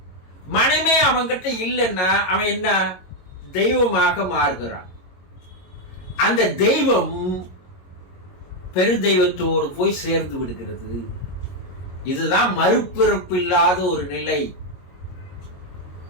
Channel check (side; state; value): right; late; 22 ms